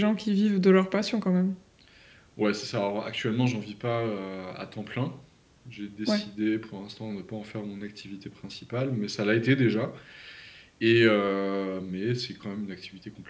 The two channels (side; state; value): both; identical; correlation 1.00